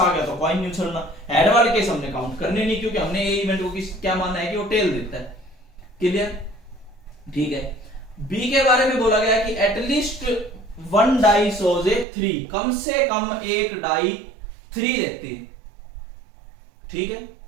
गया तो कॉइन नहीं उछलना। हेड वाले केस हमने काउंट करने नहीं, क्योंकि हमने ए इवेंट को क्या माना है कि वो टेल देता है। क्लियर? ठीक है। बी के बारे में बोला गया कि एटलीस्ट 1 डाई शोज ए 3, कम से कम एक डाई 3 देती है। ठीक है,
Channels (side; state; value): left; drops out; at 12.1 s